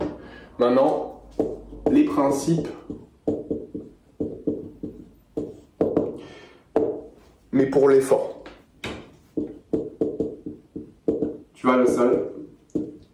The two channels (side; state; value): both; identical; correlation 1.00